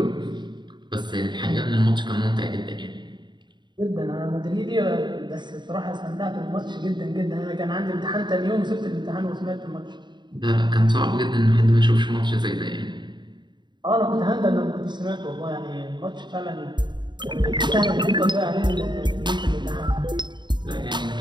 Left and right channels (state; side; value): late; left; 0.22 ms